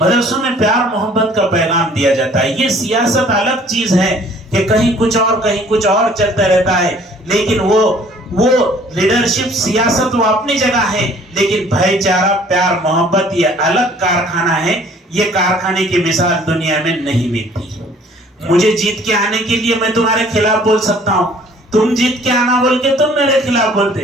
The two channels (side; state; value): both; normal; correlation 0.55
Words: मदरसों में प्यार मोहब्बत का पैगाम दिया जाता है। ये सियासत अलग चीज है कि कहीं कुछ और चलता रहता है, लेकिन वो लीडरशिप सियासत वो अपनी जगह है, लेकिन भाईचारा, प्यार, मोहब्बत ये अलग कारखाना है। ये कारखाने की मिसाल दुनिया में नहीं मिलती। मुझे जीत के आने के लिए मैं तुम्हारे खिलाफ बोल सकता हूँ, तुम जीत के आना बोल के तुम मेरे खिलाफ